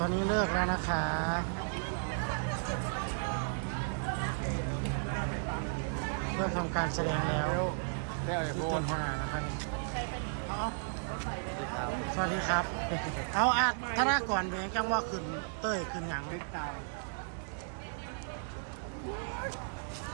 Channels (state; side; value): silent; left; digital silence